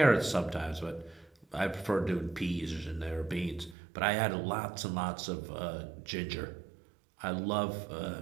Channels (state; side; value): drops out; left; at 3.8 s